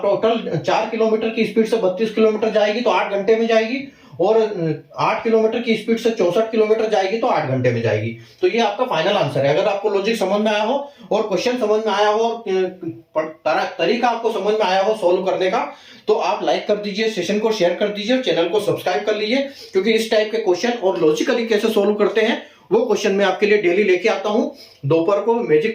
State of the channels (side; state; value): both; identical; correlation 1.00